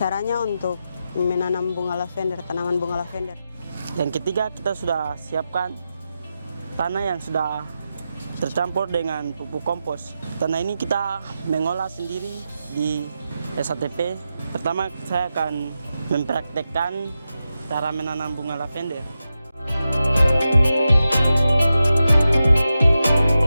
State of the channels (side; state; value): both; inverted; correlation -0.90